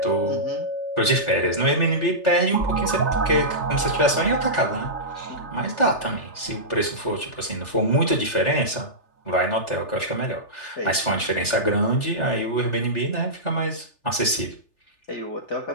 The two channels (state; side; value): late; right; 3.4 ms